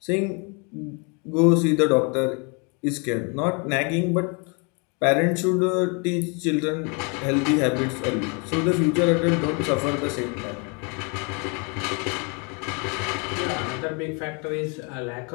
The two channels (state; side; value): quieter; right; 34.1 dB